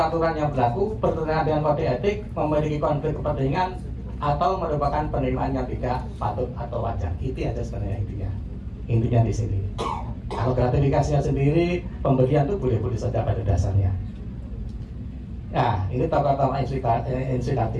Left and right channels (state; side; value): identical; both; correlation 1.00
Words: yang berlaku, bertentangan dengan kode etik, memiliki konflik kepentingan, atau merupakan penerimaan yang tidak patut atau wajar. Itu aja sebenarnya intinya di sini. Kalau gratifikasinya sendiri, pemberian itu boleh-boleh saja pada dasarnya. Nah, ini tokoh-tokoh